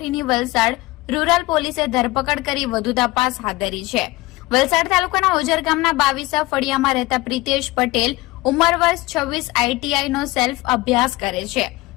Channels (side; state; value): right; quieter; 20.5 dB